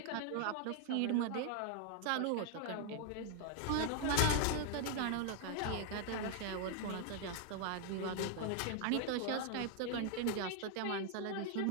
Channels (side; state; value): both; different; correlation 0.00